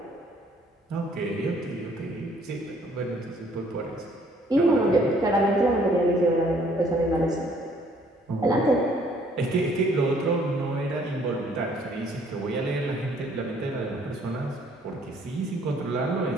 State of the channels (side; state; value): both; normal; correlation 0.62